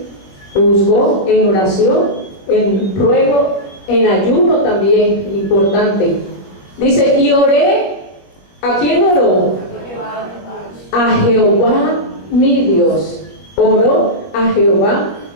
Lo buscó en oración, en ruego, en ayuno también, importante. Dice, y oré, ¿a quién oró? A Jehová mi Dios. Oró a Jehová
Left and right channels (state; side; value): late; right; 21 ms